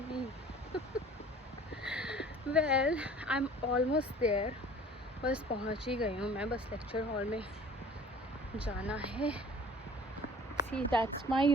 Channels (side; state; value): both; normal; correlation 0.48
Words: well I am almost there. बस पहुँच ही गई हूँ मैं। बस लेक्चर हॉल में जाना है। See that's my